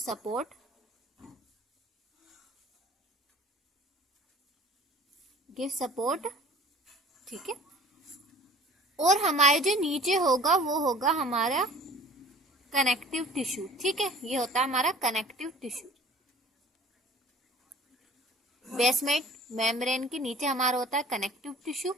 गिव सपोर्ट, ठीक है। और हमारे जो नीचे होगा वो होगा हमारा कनेक्टिव टिश्यू, ठीक है। ये होता है हमारा कनेक्टिव टिश्यू। बेसमेंट मेम्ब्रेन के नीचे हमारा होता है कनेक्टिव टिश्यू,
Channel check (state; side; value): normal; both; correlation 0.46